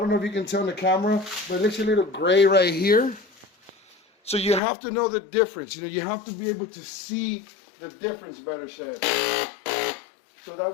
know if you can tell in the camera, but it looks a little gray right here. So you have to know the difference. You know, you have to be able to see the difference, better said. So that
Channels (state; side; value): drops out; right; at 4.6 s